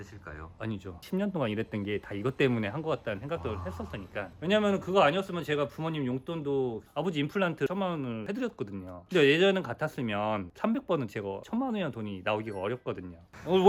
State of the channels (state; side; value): identical; both; correlation 1.00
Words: 아니죠. 10년 동안 일했던 게 다 이것 때문에 한 것 같다는 생각도 했었으니까. 왜냐면 그거 아니었으면 제가 부모님 용돈도 아버지 임플란트 1,000만 원을 해드렸거든요. 근데 예전은 같았으면 300번은 제가 1,000만 원이라는 돈이 나오기가 어렵거든요.